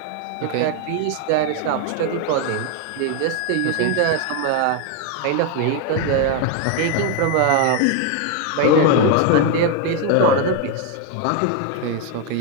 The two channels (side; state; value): both; different; correlation 0.01